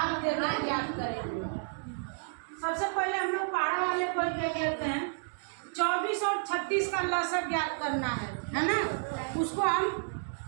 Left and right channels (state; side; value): silent; left; digital silence